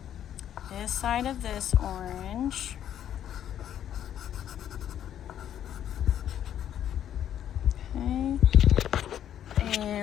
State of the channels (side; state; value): right; quieter; 10.4 dB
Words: this side of this orange, okay,